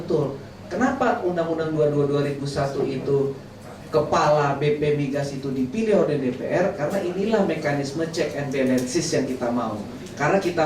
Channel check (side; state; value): both; identical; correlation 1.00